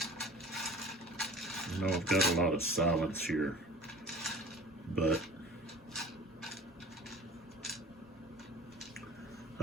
I know I've got a lot of silence here, but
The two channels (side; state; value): both; normal; correlation 0.42